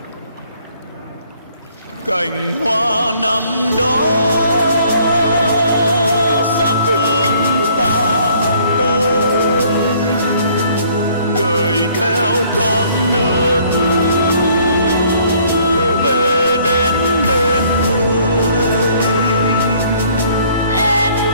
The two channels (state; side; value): inverted; both; correlation -0.60